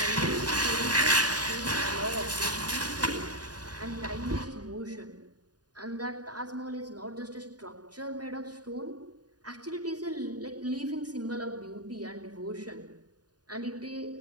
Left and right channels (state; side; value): late; left; 0.69 ms